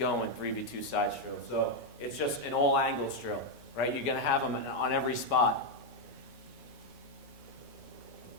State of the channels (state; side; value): normal; both; correlation 0.01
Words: 3v2 sides drill. So it's just an all angles drill, right? You're going to have them on every spot.